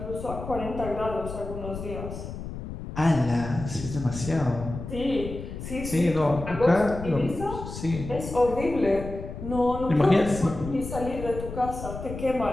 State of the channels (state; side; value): noise; left; rumble, 9 dB below the sound